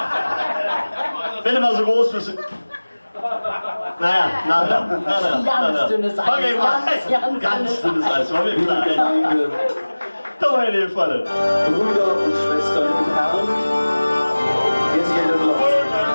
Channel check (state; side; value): inverted; both; correlation -1.00